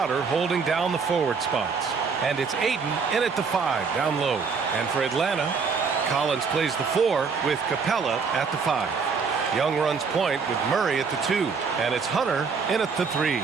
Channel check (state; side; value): quieter; left; 5.4 dB